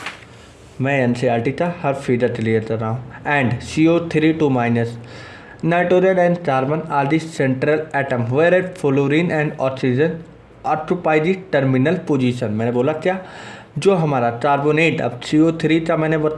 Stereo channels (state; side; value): identical; both; correlation 1.00